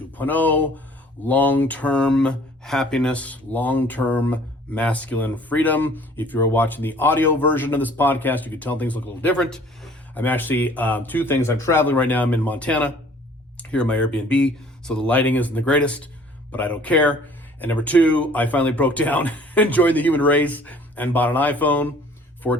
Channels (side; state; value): both; normal; correlation 0.54